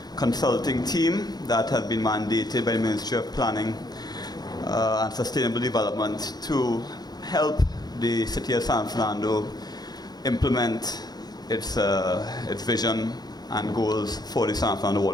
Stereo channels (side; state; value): right; late; 0.19 ms